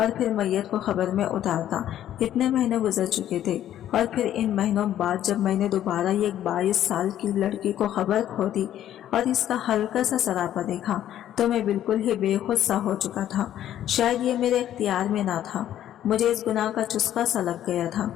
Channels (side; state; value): right; quieter; 11.6 dB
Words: फिर मैयत को खबर में उतारता। इतने महीने गुजर चुके थे और फिर इन महीनों बाद जब मैंने दोबारा ये 22 साल की लड़की को खबर खोदी और इसका हल्का सा सरापा देखा तो मैं बिल्कुल ही बेखुद सा हो चुका था। शायद ये मेरे इख्तियार में ना था। मुझे इस गुनाह का चुस्का सा लग गया था।